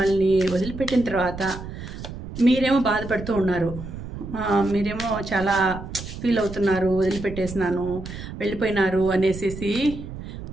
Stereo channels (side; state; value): right; noise; rumble, 10 dB below the sound